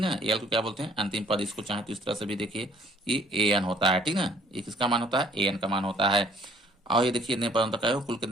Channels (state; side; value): normal; both; correlation 0.59